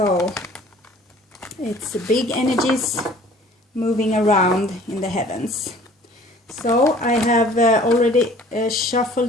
it's big energies moving around in the heavens. So I have already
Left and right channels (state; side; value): normal; both; correlation 0.51